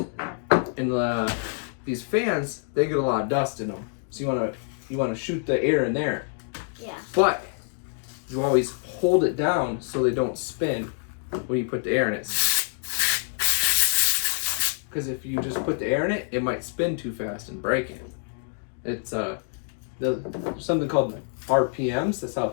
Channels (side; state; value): right; silent; digital silence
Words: these fans, they get a lot of dust in them. So you want to shoot the air in there. Yeah. But you always hold it down so they don't spin when you put the air in it. Because if you just put the air in it, it might spin too fast and break it. It's there's something called RPMs. That's how